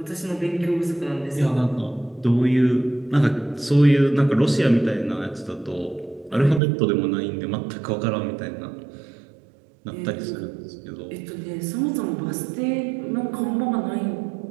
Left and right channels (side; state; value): left; drops out; at 6.6 s